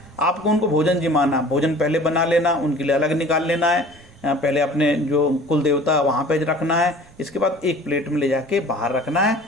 आपको उनको भोजन जिमाना, भोजन पहले बना लेना, उनके लिए अलग निकाल लेना है, पहले अपने जो कुल देवता वहाँ पे रखना है, इसके बाद एक प्लेट में ले जाके बाहर रखना है।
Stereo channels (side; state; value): both; normal; correlation 0.46